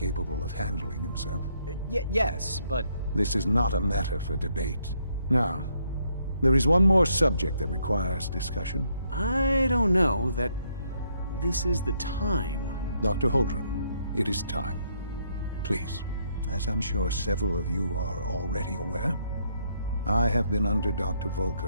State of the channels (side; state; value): both; inverted; correlation -0.72